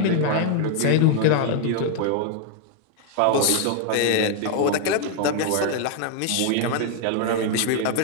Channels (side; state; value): both; different; correlation 0.00